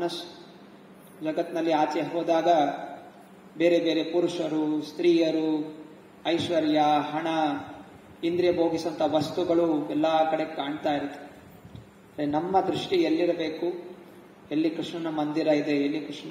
ಜಗತ್ನಲ್ಲಿ ಆಚೆ ಹೋದಾಗ ಬೇರೆ ಬೇರೆ ಪುರುಷರು, ಸ್ತ್ರೀಯರು, ಐಶ್ವರ್ಯ, ಹಣ, ಇಂದ್ರಿಯ ಭೋಗಿಸುವಂತ ವಸ್ತುಗಳು ಎಲ್ಲಾ ಕಡೆ ಕಾಣ್ತಾ ಇರುತ್ತೆ. ನಮ್ಮ ದೃಷ್ಟಿ ಎಲ್ಲಿರಬೇಕು, ಎಲ್ಲಿ ಕೃಷ್ಣನ ಮಂದಿರ ಇದೆ, ಎಲ್ಲಿ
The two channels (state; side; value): identical; both; correlation 1.00